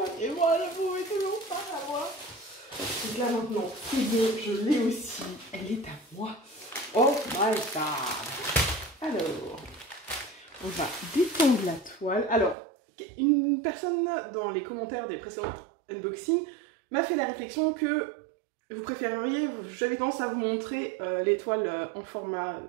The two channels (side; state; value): left; drops out; at 12.6 s